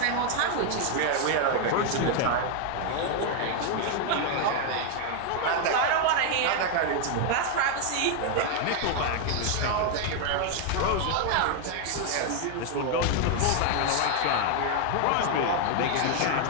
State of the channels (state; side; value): different; both; correlation 0.00